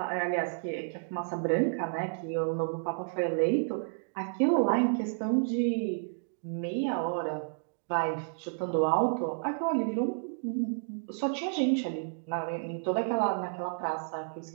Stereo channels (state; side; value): silent; left; digital silence